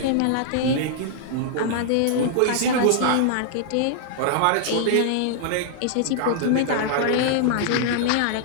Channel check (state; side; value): different; both; correlation -0.01